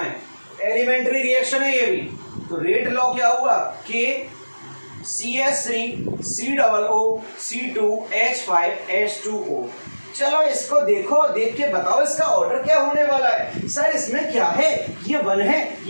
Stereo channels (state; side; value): inverted; both; correlation -1.00